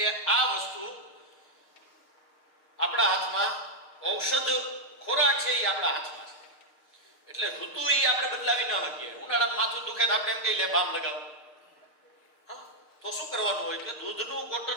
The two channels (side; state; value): right; late; 6.5 ms